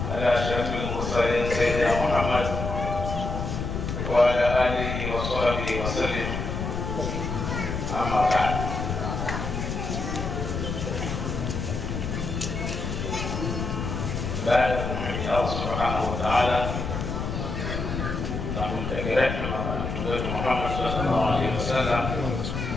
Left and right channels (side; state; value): left; noise; rumble, 3 dB below the sound